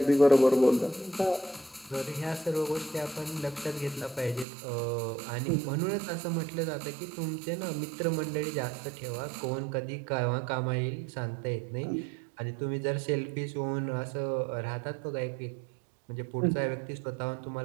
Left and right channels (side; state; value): left; drops out; at 4.5 s